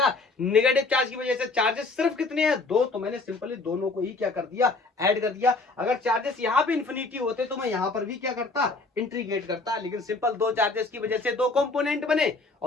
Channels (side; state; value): right; quieter; 3.6 dB